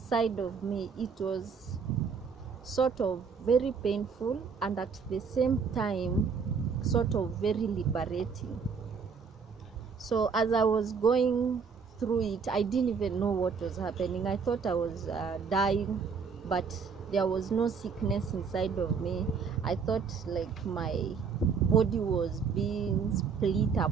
of me. It was sort of very painful and at the same time sort of very liberating. So as I was going through it, I didn't even know what was happening. I thought I was dying, but there was no sickness inside of me. I thought like my body was being split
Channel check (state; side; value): quieter; left; 5.7 dB